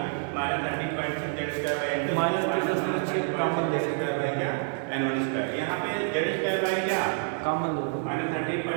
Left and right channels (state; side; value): silent; left; 59 dB below the other